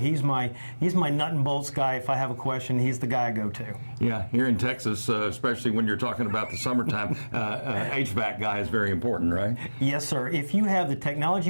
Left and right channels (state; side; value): inverted; both; correlation -1.00